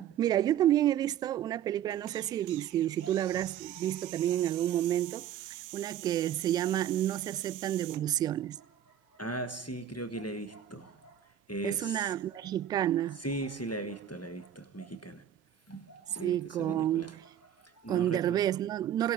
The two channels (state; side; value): quieter; left; 10.3 dB